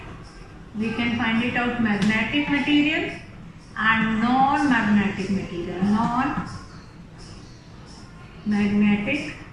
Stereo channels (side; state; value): both; identical; correlation 1.00